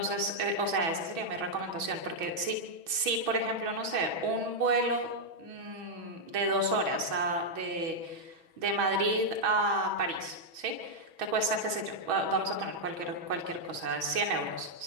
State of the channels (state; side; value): late; left; 6.2 ms